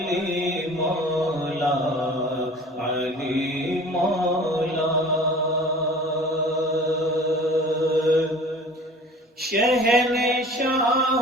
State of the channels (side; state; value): both; normal; correlation 0.44